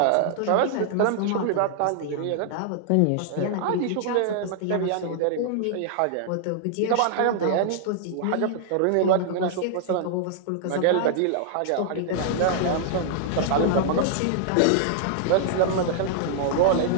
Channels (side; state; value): both; different; correlation -0.01